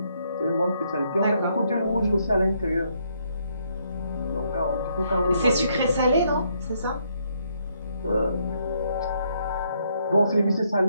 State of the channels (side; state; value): both; inverted; correlation -0.73